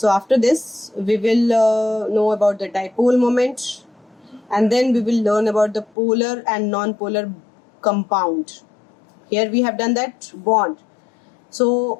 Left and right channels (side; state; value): right; drops out; at 5.9 s